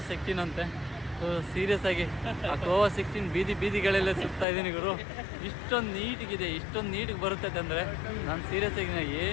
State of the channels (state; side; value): drops out; right; at 4.5 s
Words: 16 ಅಂತೆ. ಸೊ ಸೀರಿಯಸ್ ಆಗಿ ಗೋವಾ 16 ಬೀದಿಗಳೆಲ್ಲ ಸುತ್ತಾ ಇದ್ದೀನಿ ಗುರು. ಇಷ್ಟೊಂದು ನೀಟಿಗೆ ಬರುತ್ತೈತೆ ಅಂದರೆ ನಾನು ಸೀರಿಯಸ್ ಆಗಿ